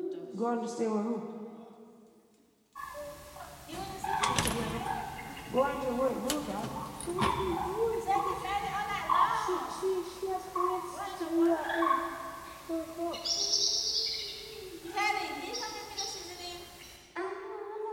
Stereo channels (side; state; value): both; identical; correlation 1.00